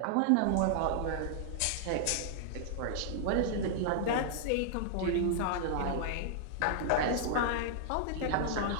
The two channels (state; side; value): different; both; correlation -0.01